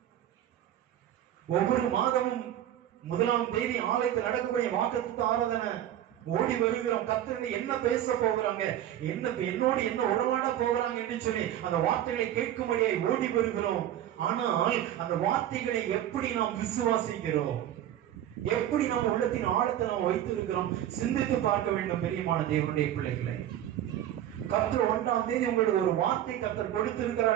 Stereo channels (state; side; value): quieter; left; 11.8 dB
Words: ஒவ்வொரு மாதமும் 1ஆம் தேதி ஆலயத்தில் நடக்கக்கூடிய வாக்குத்தத்த ஆராதனை ஓடி வருகிறோம். கர்த்தர் என்ன பேச போகிறாங்க, என்னோடு என்ன உறவாட போகிறாங்க என்று சொல்லி அந்த வார்த்தைகளை கேட்கும்படியாய் ஓடி வருகிறோம். ஆனால் அந்த வார்த்தைகளை எப்படி நாம் விசுவாசிக்கிறோம்? எப்படி நம்ம உள்ளத்தின் ஆழத்தை நாம் வைத்திருக்கிறோம்? சிந்தித்து பார்க்க வேண்டும். பெரியமான தேவனுடைய பிள்ளைகளை, கர்த்தர் 1ஆம் தேதி உங்களுக்கு ஒரு வார்த்தை கர்த்தர்